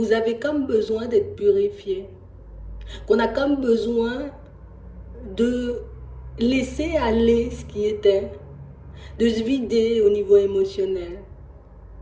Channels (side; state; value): both; identical; correlation 1.00